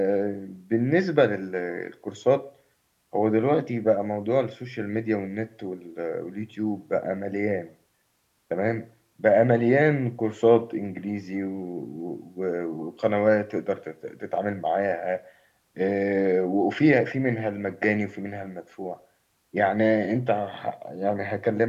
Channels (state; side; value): identical; both; correlation 1.00